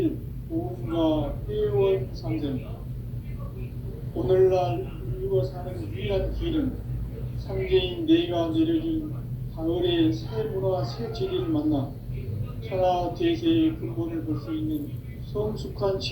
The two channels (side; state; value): both; identical; correlation 1.00